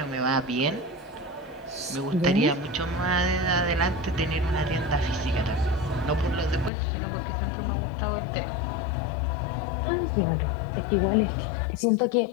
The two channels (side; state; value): right; drops out; at 6.7 s